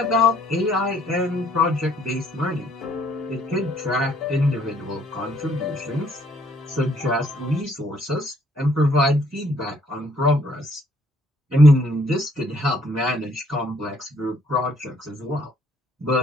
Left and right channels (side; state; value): both; normal; correlation 0.64